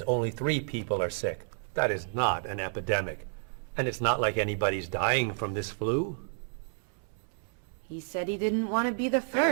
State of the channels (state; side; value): silent; left; 57 dB below the other